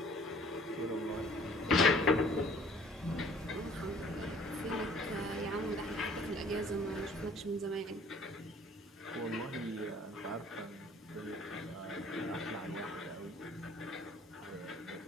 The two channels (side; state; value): both; normal; correlation 0.55